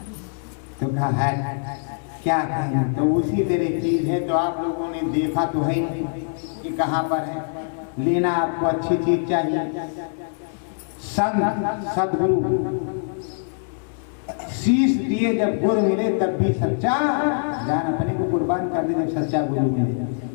तो कहा है क्या कहें, तो उसी तरह चीज है। तो आप लोगों ने देखा तो है नहीं कि कहाँ पर है। लेना आपको अच्छी चीज चाहिए, संत सदगुरु शीश दिए जब गुरु मिले तब भी सच्चा, जान अपने को कुर्बान कर दे जब सच्चा गुरु मिले।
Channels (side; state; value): right; silent; digital silence